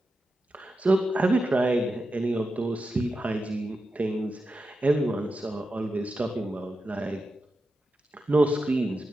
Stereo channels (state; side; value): normal; both; correlation 0.90